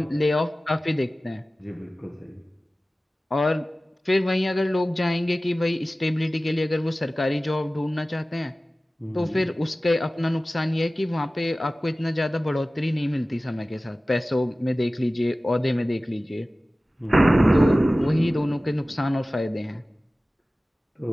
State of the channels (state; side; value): normal; both; correlation 0.97